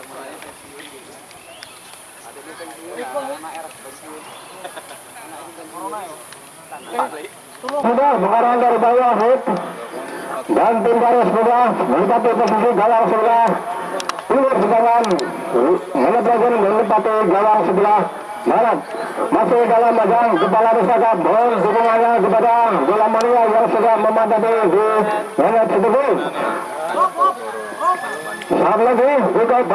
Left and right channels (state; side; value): identical; both; correlation 1.00